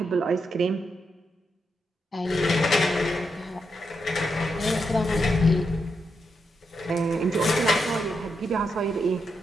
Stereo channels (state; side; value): normal; both; correlation 0.83